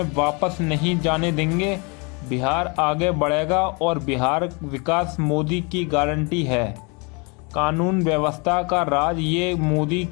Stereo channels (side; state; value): right; quieter; 31.3 dB